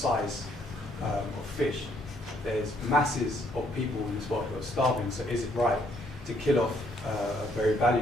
of fish. There's masses of people in this world who are starving, so is it right to kill off a very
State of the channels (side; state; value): both; normal; correlation 0.68